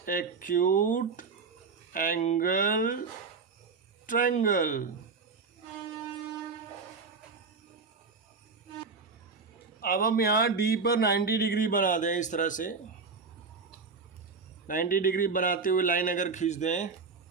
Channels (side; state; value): left; quieter; 4.8 dB